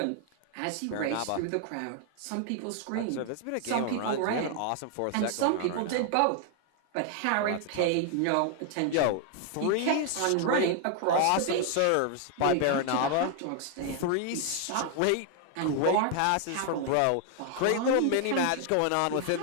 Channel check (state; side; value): different; both; correlation 0.00